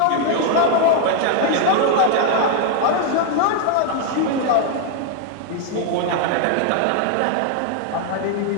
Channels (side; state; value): both; different; correlation 0.00